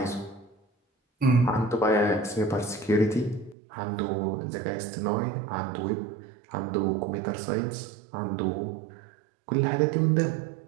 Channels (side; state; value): left; drops out; at 3.6 s